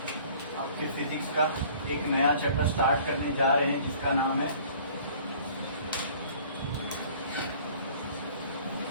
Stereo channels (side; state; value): both; inverted; correlation -0.51